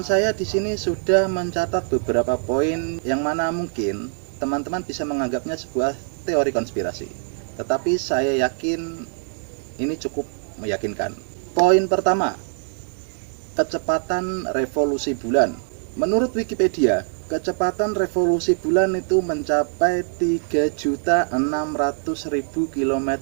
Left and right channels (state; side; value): silent; left; 63 dB below the other